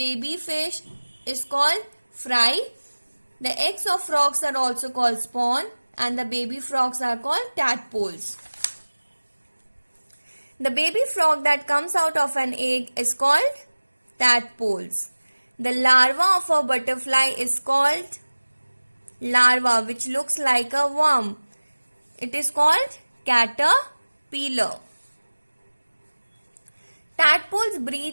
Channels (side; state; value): both; inverted; correlation -1.00